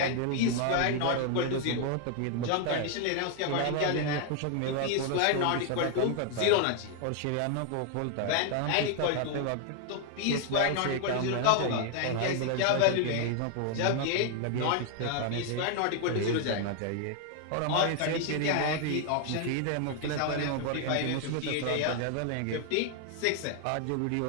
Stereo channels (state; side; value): different; both; correlation 0.00